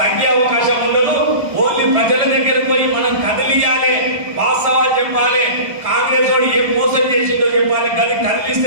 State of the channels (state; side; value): late; left; 1.7 ms